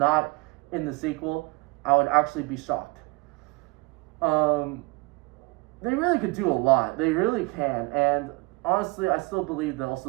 in the sequel, I would actually be shocked. They really could do a lot. They really can. And honestly, I still believe that also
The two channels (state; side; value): quieter; left; 24.8 dB